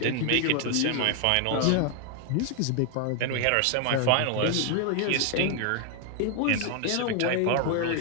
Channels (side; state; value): both; different; correlation 0.01